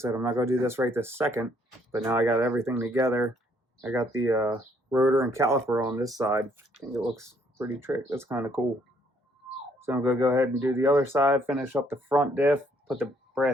I'm not going to do this right this second, but now I got everything together. I got the rotor and caliper on this side. I think it looks pretty trick. That's kind of cool. So I'm going to go ahead and do the other side, finish up the front diff, put the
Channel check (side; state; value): both; normal; correlation 0.66